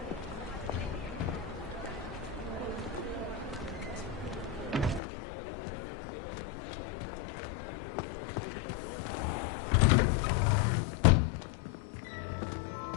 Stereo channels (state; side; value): drops out; right; at 5.0 s